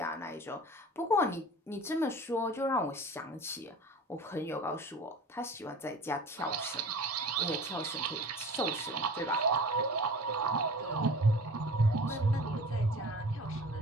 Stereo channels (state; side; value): normal; both; correlation 0.40